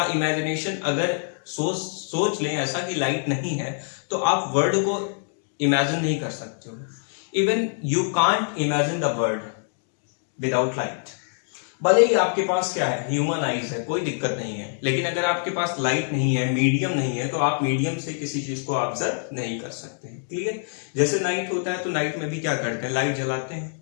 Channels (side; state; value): right; silent; digital silence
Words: इमेजिनेशन अगर सोच लें ऐसा कि लाइट नहीं है तो आप वर्ल्ड को इमेजिन नहीं कर सकते हो। Even you can't imagine the world without light। भले ही आपके पास क्या है, ह्यूमन आईज है, कोई दिक्कत नहीं है, लेकिन अगर आपके पास लाइट नहीं है, मीडियम नहीं है, तो आप मीडियम से किसी चीज को ऑब्जर्व नहीं कर सकते हैं। क्लियर? जैसे नाइट होता है तो नाइट में भी क्या करते हैं, लाइट जलाते हैं।